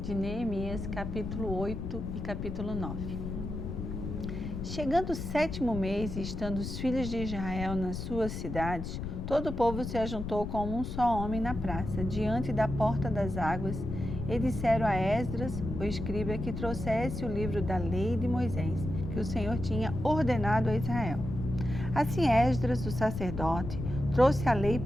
de Neemias, capítulo 8 e capítulo 9. Chegando o 7º mês e estando os filhos de Israel nas suas cidades, todo o povo se ajuntou como um só homem na praça, diante da porta das águas, e disseram a Esdras, o escriba, que trouxesse o livro da lei de Moisés, que o Senhor tinha ordenado a Israel. Assim Esdras, o sacerdote, trouxe a lei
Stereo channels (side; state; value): left; noise; rumble, 5 dB below the sound